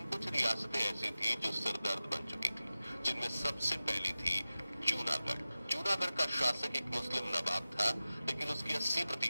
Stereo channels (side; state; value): both; inverted; correlation -0.95